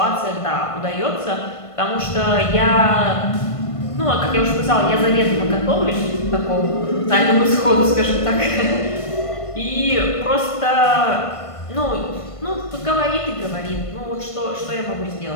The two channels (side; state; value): right; late; 1.5 ms